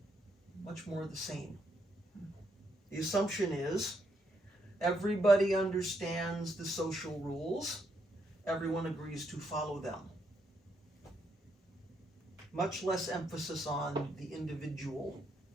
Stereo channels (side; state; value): both; normal; correlation 0.77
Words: much more the same. The assumption is everybody understands the social rules, everyone agrees to follow them. Much less emphasis on the individual,